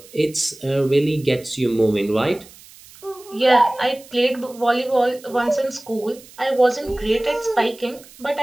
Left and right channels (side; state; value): right; noise; hiss, 22 dB below the sound